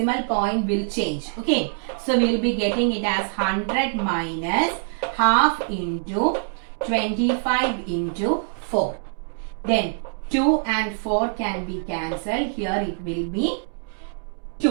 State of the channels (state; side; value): silent; left; 63 dB below the other